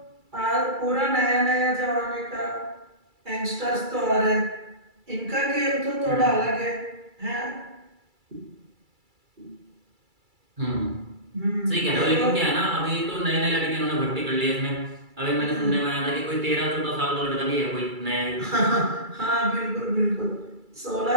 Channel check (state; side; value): late; left; 2.3 ms